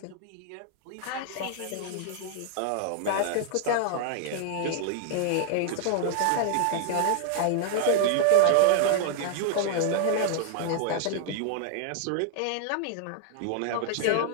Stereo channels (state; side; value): different; both; correlation -0.01